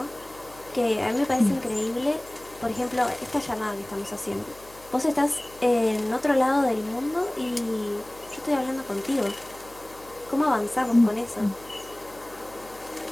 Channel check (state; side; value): noise; left; hum, 24 dB below the sound